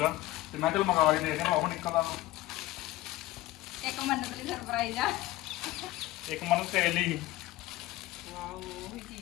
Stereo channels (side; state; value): right; quieter; 17.1 dB